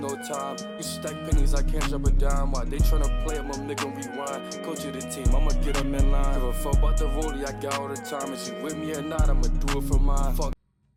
time. You stack pennies, I can't drop a dime. Why they tryna play it, my nigga rewind. Coach of the team, I'ma get them in line. Give a fuck about the rollie I got all the time. If she with me or not, I'ma do it for mine. Fuck.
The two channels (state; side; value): identical; both; correlation 1.00